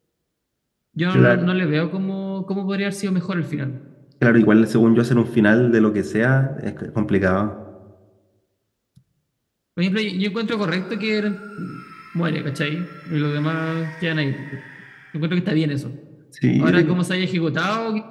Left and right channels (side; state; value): both; identical; correlation 1.00